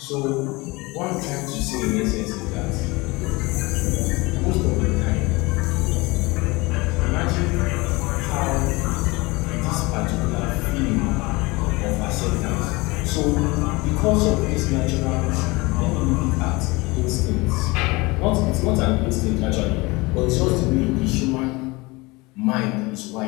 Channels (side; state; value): right; quieter; 23.9 dB